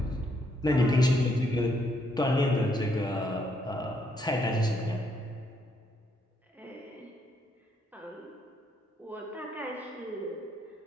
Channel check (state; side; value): normal; both; correlation 0.74